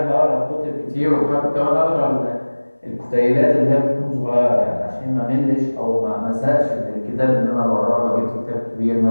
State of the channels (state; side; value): inverted; both; correlation -1.00